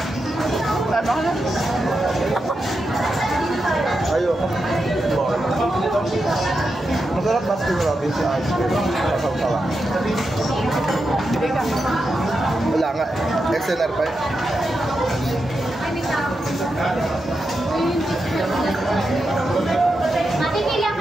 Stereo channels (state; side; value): normal; both; correlation 0.87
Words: Ano ka na? Ayoko. Masarap Baskin Robbins yung ice cream. Masaw-sawa. Hindi ka. Wala nga. XNR pa eh. Matipila